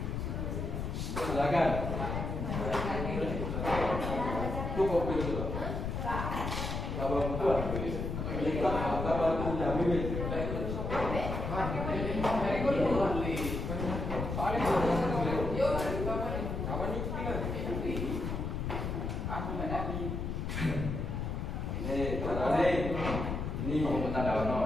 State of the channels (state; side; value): noise; left; rumble, 3 dB below the sound